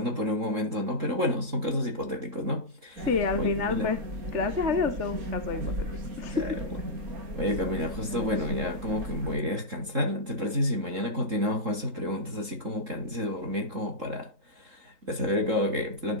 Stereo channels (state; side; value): late; left; 3.7 ms